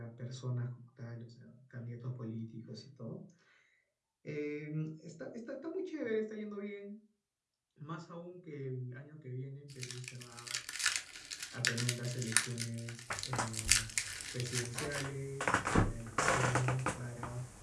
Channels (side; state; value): both; identical; correlation 1.00